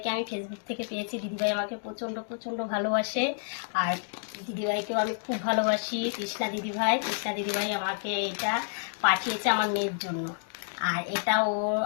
আমি ফেসবুক থেকে পেয়েছি। দিদিভাই আমাকে প্রচণ্ড প্রচণ্ড ভালোবাসে। আর দিদিভাইকেও আমি খুব ভালোবাসি। কৃষ্ণা দিদিভাই আমাকে এটা পাঠিয়েছে আমার মেয়ের জন্য। আর এটা ও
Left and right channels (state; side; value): silent; right; digital silence